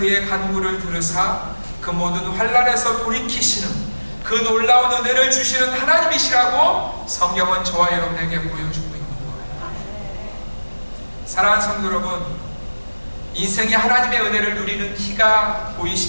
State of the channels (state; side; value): inverted; both; correlation -1.00